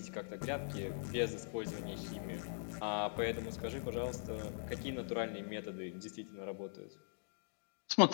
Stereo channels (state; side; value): silent; right; digital silence